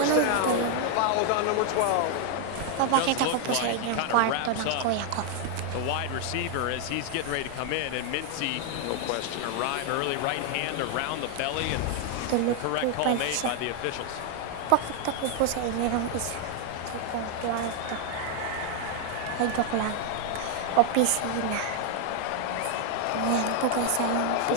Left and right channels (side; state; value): both; different; correlation 0.00